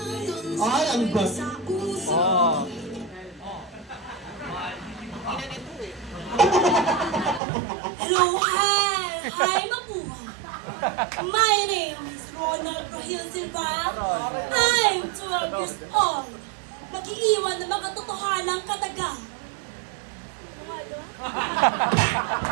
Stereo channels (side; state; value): left; drops out; at 7.4 s